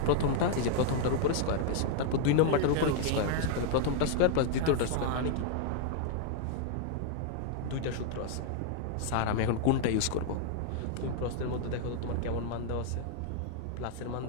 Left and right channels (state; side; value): different; both; correlation 0.00